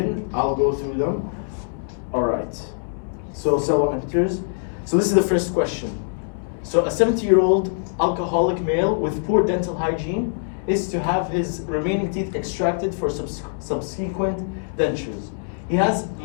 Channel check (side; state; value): right; silent; digital silence